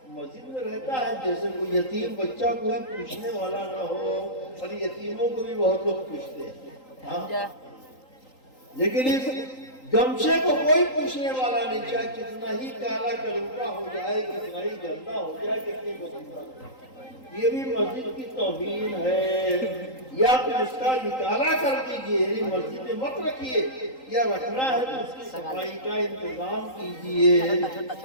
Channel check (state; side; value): late; right; 3.8 ms